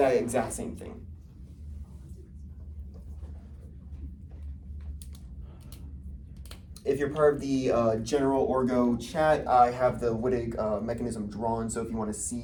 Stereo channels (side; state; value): both; identical; correlation 1.00